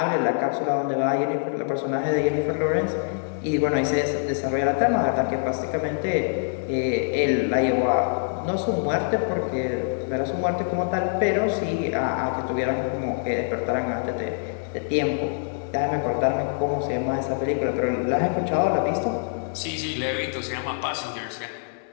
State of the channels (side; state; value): right; silent; digital silence